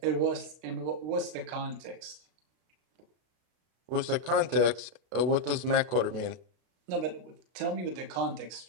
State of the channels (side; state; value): left; late; 32 ms